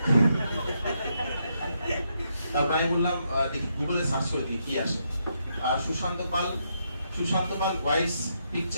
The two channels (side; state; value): both; inverted; correlation -0.79